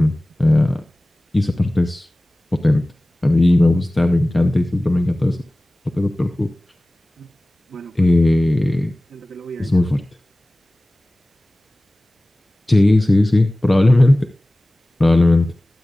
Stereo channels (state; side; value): normal; both; correlation 0.98